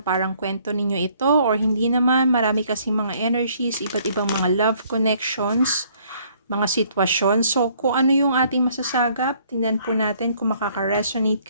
parang kwento ninyo ito or hindi naman. Marami kasing mga energies, iba't ibang mga love connections, mga sitwasyon. So kung ano yung ating masasagap, tingnan po natin kung makaka-resonate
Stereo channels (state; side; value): inverted; both; correlation -0.63